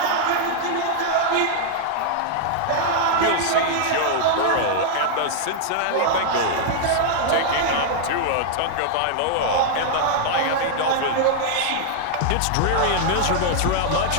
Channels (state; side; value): different; both; correlation -0.01